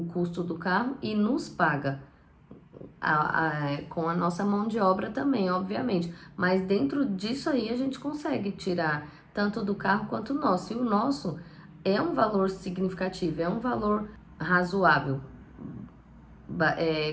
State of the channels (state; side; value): identical; both; correlation 1.00